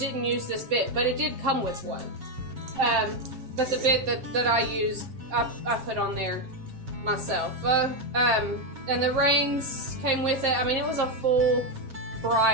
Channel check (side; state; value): left; late; 7.5 ms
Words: use this bit, but it did come with one. But the bit that I used, I put on there myself. And the reins came with it. I mean, it was a full